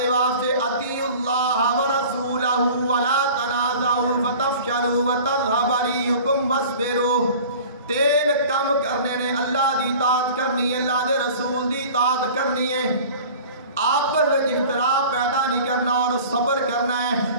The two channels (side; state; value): both; inverted; correlation -0.42